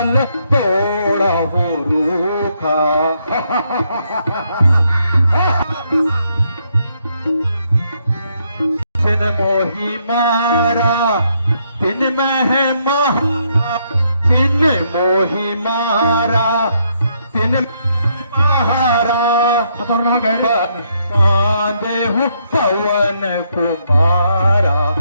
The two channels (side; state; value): both; inverted; correlation -0.74